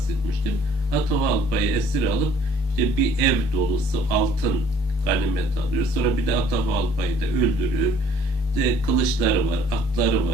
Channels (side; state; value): both; normal; correlation 0.57